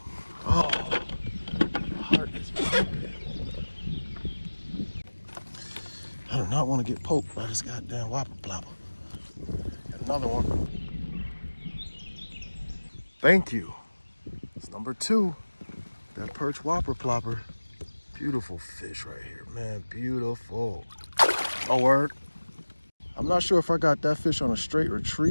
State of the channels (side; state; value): both; inverted; correlation -1.00